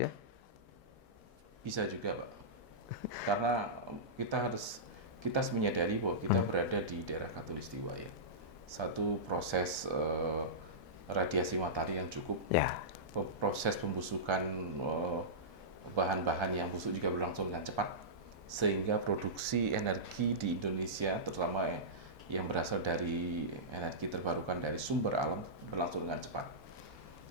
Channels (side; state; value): right; late; 1.7 ms